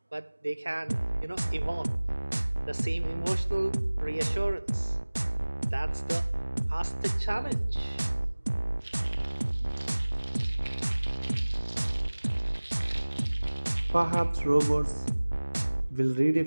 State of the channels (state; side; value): inverted; both; correlation -1.00